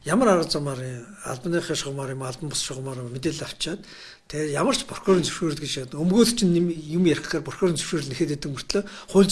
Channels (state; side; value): identical; both; correlation 1.00